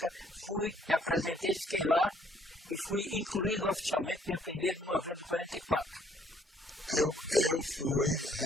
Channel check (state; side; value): normal; both; correlation 0.64